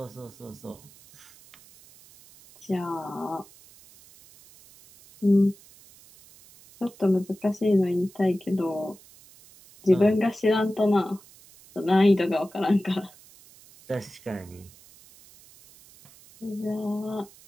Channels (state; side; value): noise; right; hiss, 24 dB below the sound